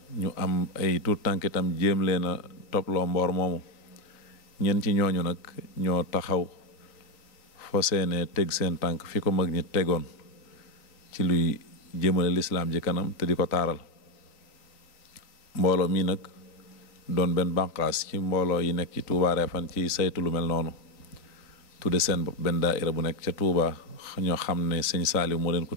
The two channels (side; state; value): right; late; 3.9 ms